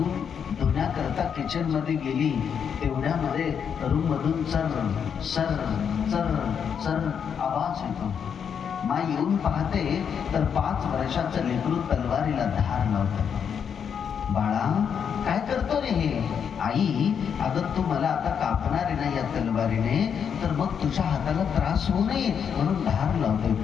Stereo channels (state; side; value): quieter; right; 7.4 dB